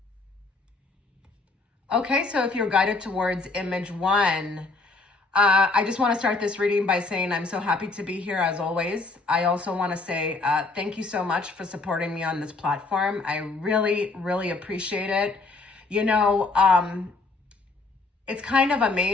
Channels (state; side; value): quieter; right; 3.6 dB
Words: Okay, so if you're guided towards image one, I just want to start this reading by saying I'm so happy to be here as always. I also want to say thank you so much for supporting me on this platform. I really, really appreciate it. You know, it's kind of